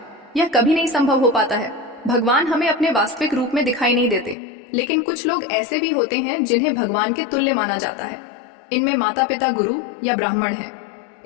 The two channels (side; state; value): right; drops out; at 4.4 s